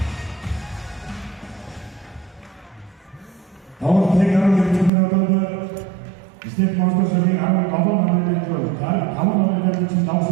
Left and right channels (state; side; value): drops out; left; at 4.9 s